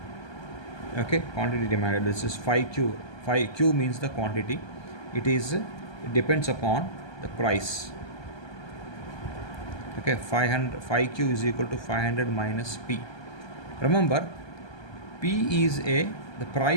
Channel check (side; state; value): right; late; 1.2 ms